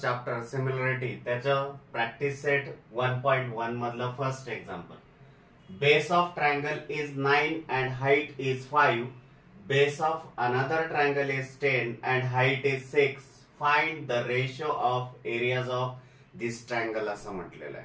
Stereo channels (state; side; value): identical; both; correlation 1.00